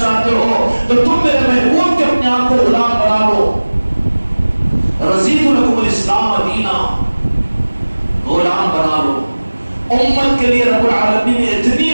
ہو تو تم میرے محبوب کے اپنے آپ کو غلام بنا لو. رضیت لکم الاسلام دینا، غلام بنا لو. امت کے لیے رب العالمین نے اتنی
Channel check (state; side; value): inverted; both; correlation -1.00